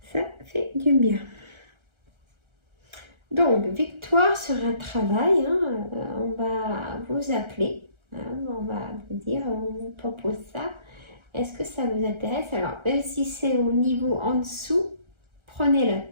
Ça fait du bien. Donc, victoire sur un travail. Hein, on va vous appeler. On va vous dire, on vous propose ça. Est-ce que ça vous intéresse? Alors, même si c'est au niveau en dessous, prenez-le.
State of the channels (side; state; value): left; late; 1.3 ms